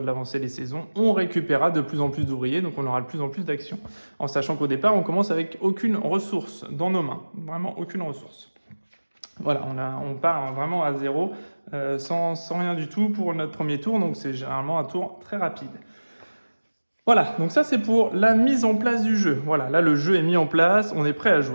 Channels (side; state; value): both; inverted; correlation -1.00